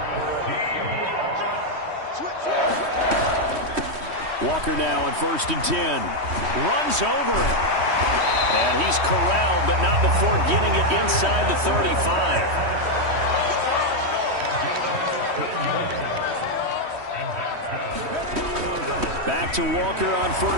Walker now on 1st and 10. Runs over it. And he's corralled, but not before getting it inside the 35. Back to Walker on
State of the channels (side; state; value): left; late; 3.1 ms